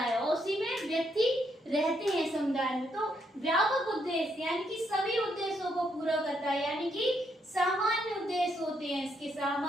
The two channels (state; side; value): normal; both; correlation 0.76